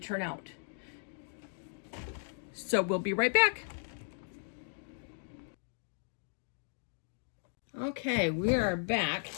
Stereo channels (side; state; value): right; silent; digital silence